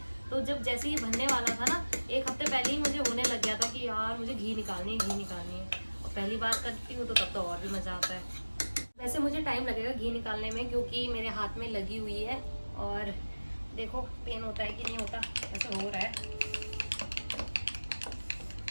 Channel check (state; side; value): inverted; both; correlation -1.00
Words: तो जब जैसे ये बनने वाला था ना 1 हफ्ते पहले ही मुझे होने लग गया था कि यार मुझे घी निकालनी है। और पहली बार करती हूँ तो तब तो और भी मज़ा आता है। वैसे मुझे टाइम लगेगा घी निकालने में क्योंकि मेरे हाथ में लगी हुई है और देखो पेन होता है कि नहीं होता, ऐसा हो रहा है।